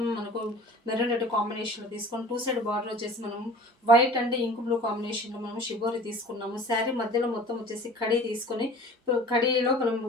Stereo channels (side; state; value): both; normal; correlation 0.43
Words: మనకు మెరూన్ రెడ్ కాంబినేషన్లో తీసుకొని 2 సైడ్ బార్డర్ వచ్చేసి మనం వైట్ అండ్ ఇంక్ బ్లూ కాంబినేషన్లో మనం షిబోరి తీసుకున్నాము. శారీ మధ్యలో మొత్తం వచ్చేసి కడీ తీసుకొని కడీలో మనం